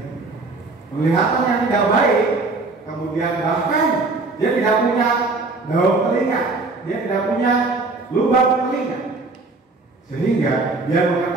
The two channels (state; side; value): quieter; left; 3.6 dB